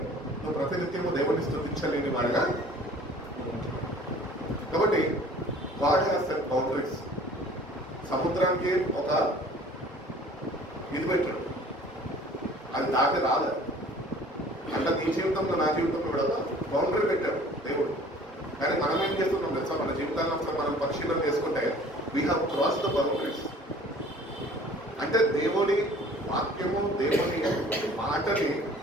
నువ్వు ప్రతినిత్యము దేవుడిని స్థుతించలేని వాడిగా. కాబట్టి గాడ్ హ్యాస్ సెట్ బౌండరీస్. సముద్రానికి ఒక ఇది పెట్టాడు, అది దాటి రాదు. అట్లా నీ జీవితంలో నా జీవితంలో కూడా బౌండరీ పెట్టాడు దేవుడు. కానీ మనం ఏం చేస్తున్నాం తెలుసా? మన జీవితాల్లో ఒకసారి మనం పరిశీలన చేసుకుంటే we have cross the boundaries. అంటే దేవుని వాక్యము, దేవుని మాటని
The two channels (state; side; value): normal; both; correlation 0.50